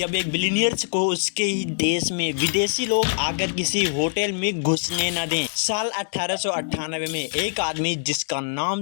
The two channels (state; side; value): silent; right; digital silence